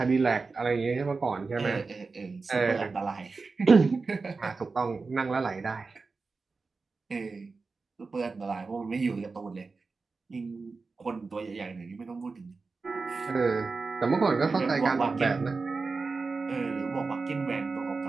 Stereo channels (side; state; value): left; quieter; 4.2 dB